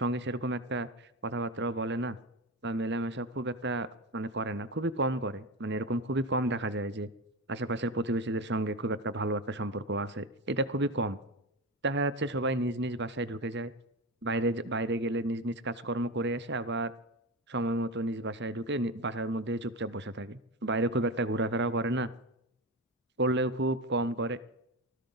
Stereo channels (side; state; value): both; normal; correlation 0.20